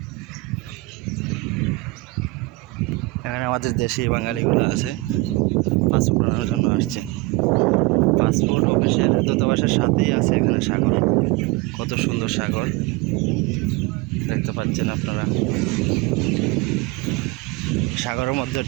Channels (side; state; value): left; quieter; 22.8 dB